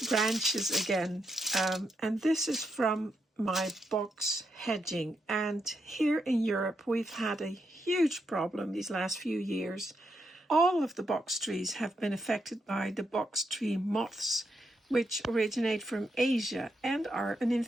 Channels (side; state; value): both; normal; correlation 0.81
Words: branches again. And this is from my box hedging. And here in Europe, we've had a huge problem these last few years. All of the box trees have been affected by the box tree moths, which originate from Asia and are an